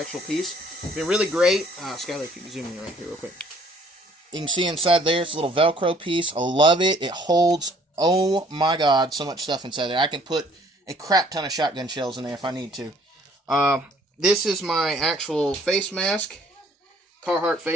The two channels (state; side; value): normal; both; correlation 0.59